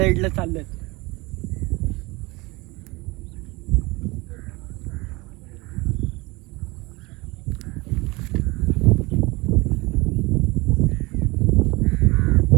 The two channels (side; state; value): left; quieter; 23.7 dB